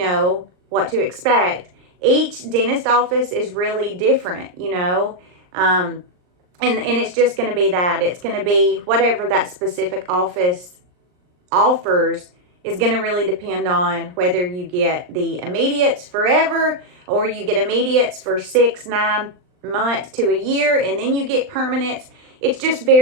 what to expect. Each dentist office is really different, and it's just going to be that. It's going to be whatever that specific office offers is going to really depend on whether you get the immediates forever or you get immediates for 6-9 months to a year and then you get permanents. It's just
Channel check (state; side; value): late; left; 39 ms